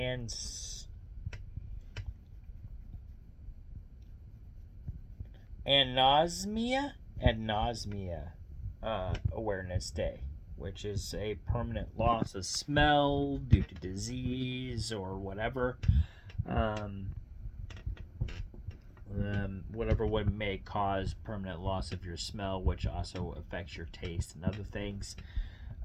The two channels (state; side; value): identical; both; correlation 1.00